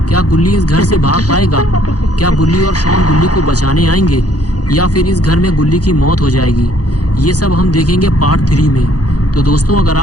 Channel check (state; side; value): late; right; 0.68 ms